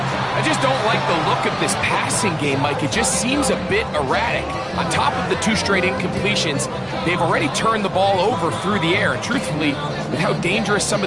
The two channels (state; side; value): identical; both; correlation 1.00